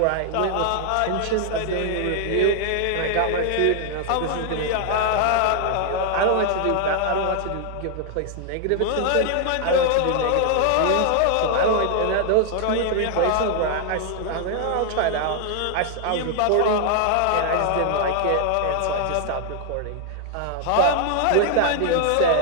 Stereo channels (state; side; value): different; both; correlation 0.00